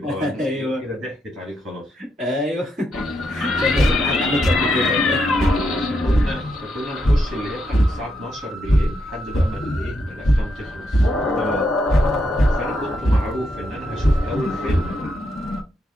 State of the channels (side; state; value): both; normal; correlation 0.81